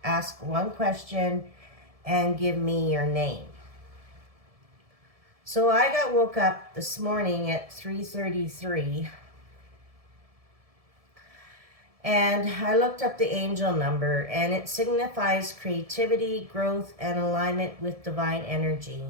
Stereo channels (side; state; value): left; late; 1.7 ms